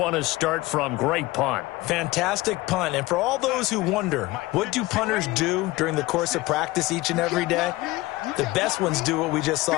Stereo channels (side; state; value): right; quieter; 19.6 dB